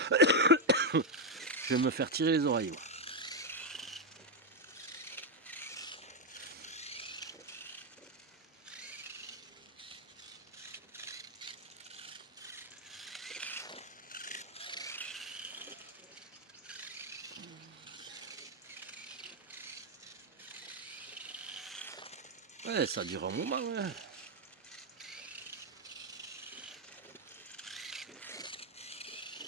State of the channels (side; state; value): both; normal; correlation 0.03